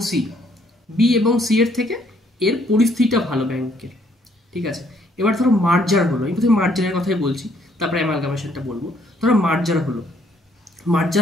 সি। বি এবং সি এর থেকে এর পরিস্থিতিটা ভালো ব্যাংকের, ঠিক আছে। এবার ধরো মার্জার হলো, আমি প্রথমে মার্জারের কথাই বলছি, তারপরে অ্যামালগামেশনটা বলবো। ধরো মার্জার হলো,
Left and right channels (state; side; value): normal; both; correlation 0.67